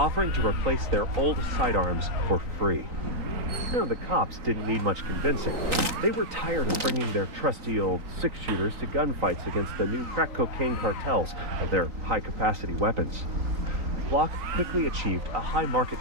to replace their old sidearms for free. Now, the cops didn't need much convincing. They were tired of bringing their trusty old six-shooters to gunfights against the new crack cocaine cartels and their high-capacity weapons. Glock quickly achieved a high market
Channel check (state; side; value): late; left; 3.9 ms